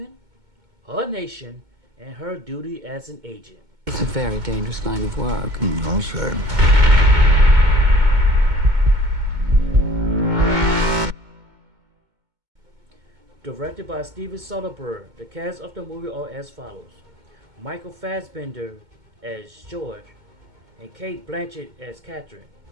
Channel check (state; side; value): late; left; 2.2 ms